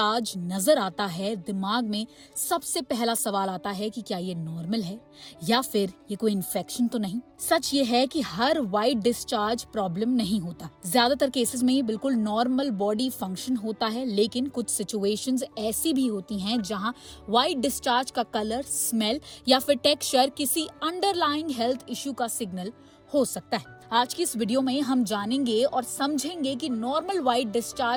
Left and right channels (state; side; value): identical; both; correlation 1.00